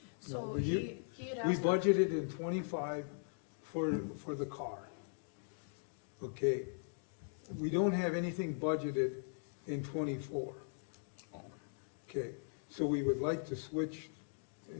So we- he had We asked. budgeted in 25 for the car. Okay, we don't have anything budgeted in 24. Okay, so we would like to switch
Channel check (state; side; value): silent; right; digital silence